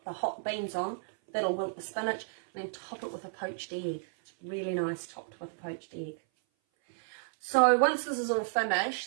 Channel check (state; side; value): silent; left; 56 dB below the other